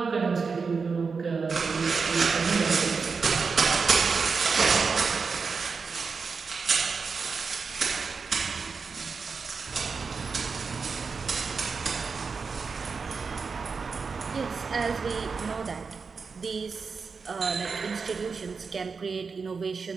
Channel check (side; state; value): left; quieter; 5.1 dB